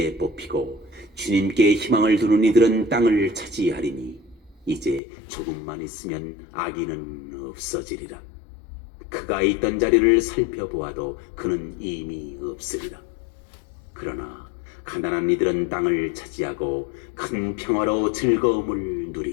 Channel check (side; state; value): right; drops out; at 5.0 s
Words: 뽑히고 주님께 희망을 두는 이들은 땅을 차지하리니 이제 조금만 있으면 악인은 없어지리라. 그가 있던 자리를 살펴보아도 그는 이미 없으리라. 그러나 가난한 이들은 땅을 차지하고 큰 평화로 즐거움을